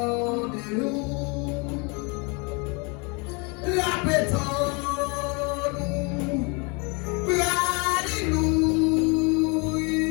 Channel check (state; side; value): quieter; right; 31.3 dB